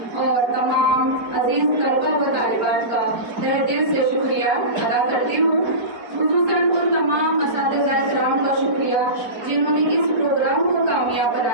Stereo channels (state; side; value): late; left; 4.4 ms